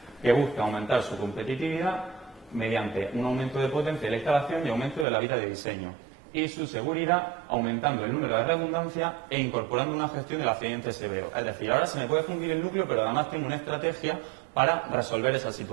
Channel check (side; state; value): left; drops out; at 5.1 s